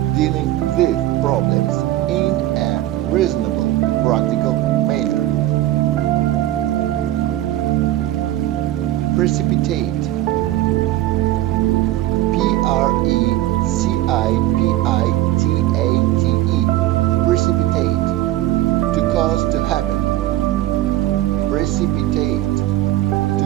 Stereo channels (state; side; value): quieter; left; 14.8 dB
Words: dealing with problems in a reasonable, practical manner. Precipitate, P-R-E-C-I-P-I-T-A-T-E, precipitate, to cause to happen. Precipitate, to